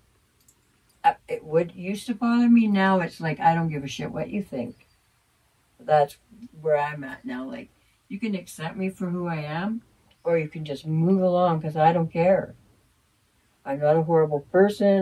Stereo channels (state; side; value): identical; both; correlation 1.00